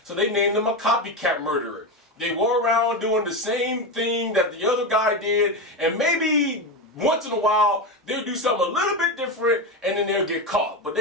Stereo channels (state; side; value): normal; both; correlation 0.16